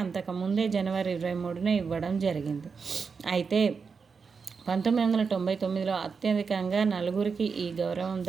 అంతకుముందే జనవరి 23న ఇవ్వడం జరిగింది. అయితే 1999లో అత్యధికంగా 4గురికి ఈ గౌరవం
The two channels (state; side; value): quieter; left; 5.4 dB